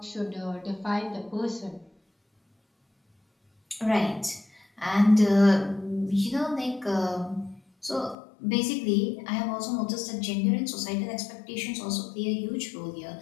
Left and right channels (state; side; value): drops out; right; at 8.2 s